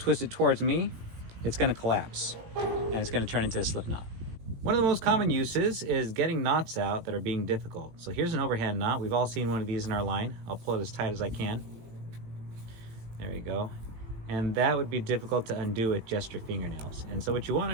it towards me, it's going to collapse and it's going to turn into a slip knot. One of the most common uses is getting knots out that are being difficult. So here's an overhand knot. We've all seen one of these in our line. I'll pull it as tight as I can. There you go. And that would be difficult to undo with just your fingernails. And so what you want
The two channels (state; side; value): late; left; 18 ms